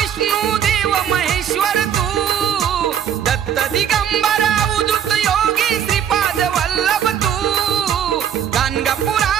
देव महेश्वर तू दत्त दिगंबरा उदित योगी श्रीपाद वल्लभ तू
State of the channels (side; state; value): left; quieter; 9.2 dB